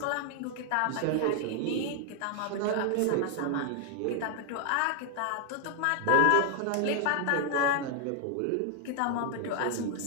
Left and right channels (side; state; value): both; different; correlation 0.00